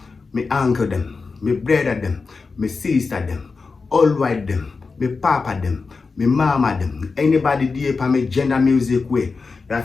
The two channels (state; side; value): quieter; right; 4.4 dB